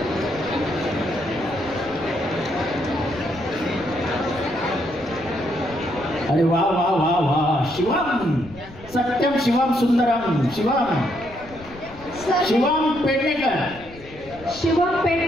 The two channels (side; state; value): left; noise; rumble, 19 dB below the sound